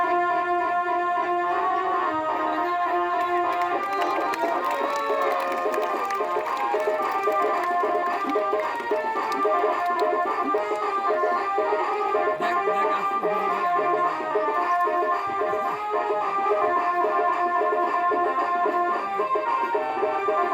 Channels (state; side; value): identical; both; correlation 1.00